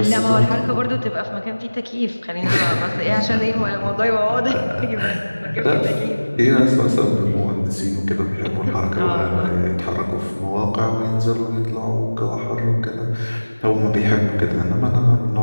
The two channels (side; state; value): both; inverted; correlation -1.00